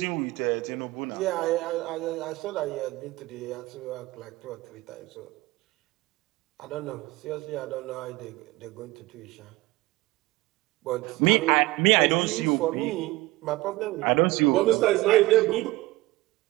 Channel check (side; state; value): left; quieter; 20.0 dB